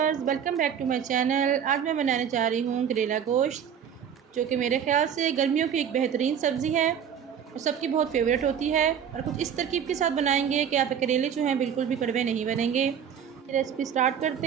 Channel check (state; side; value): quieter; left; 8.3 dB